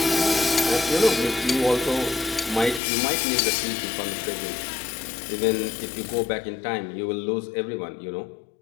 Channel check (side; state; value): right; drops out; at 2.8 s